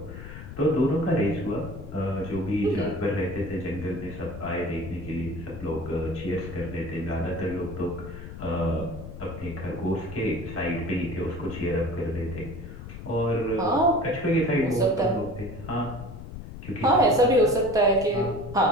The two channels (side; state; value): left; noise; rumble, 11 dB below the sound